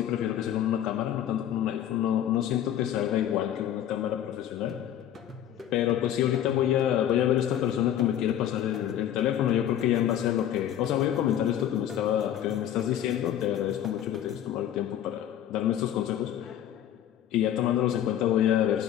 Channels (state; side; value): quieter; right; 10.9 dB